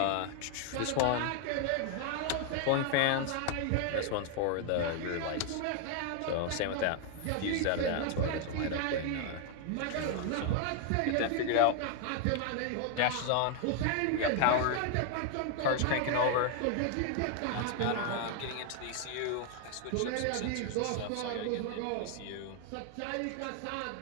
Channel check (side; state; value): both; different; correlation 0.00